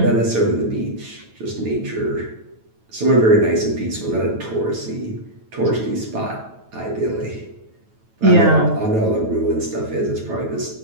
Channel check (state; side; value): late; left; 9.1 ms